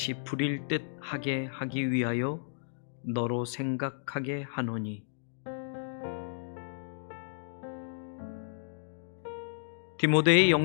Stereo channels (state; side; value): silent; right; digital silence